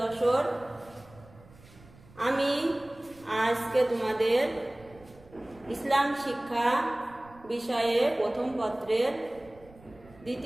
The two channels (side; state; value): right; noise; rumble, 24 dB below the sound